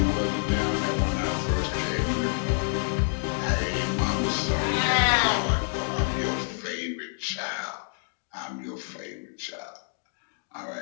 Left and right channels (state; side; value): silent; right; digital silence